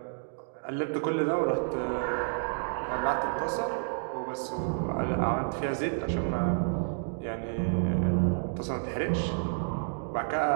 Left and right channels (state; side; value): silent; left; digital silence